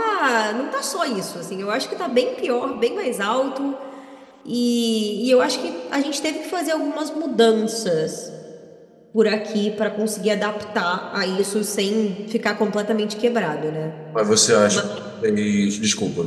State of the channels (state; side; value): identical; both; correlation 1.00